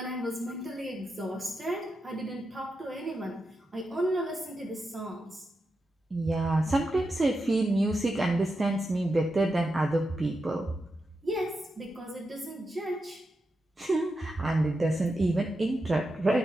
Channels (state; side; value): normal; both; correlation 0.88